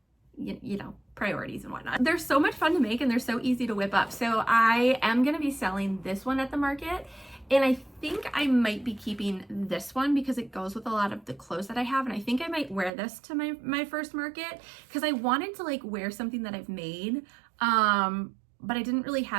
you know, priorities and whatnot. They're so much fun to make and they're so easy to whip up. So I am going to be selling this one at the market. And I think I might be keeping this one because it goes with a lot of the clothes that I have. And I think I might wear this to my first market because I wanted to like wear something that I've made. But I didn't really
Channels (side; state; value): left; drops out; at 12.9 s